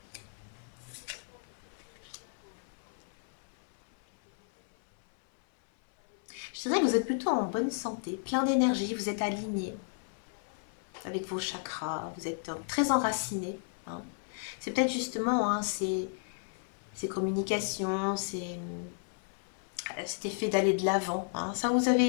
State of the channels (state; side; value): silent; right; 55 dB below the other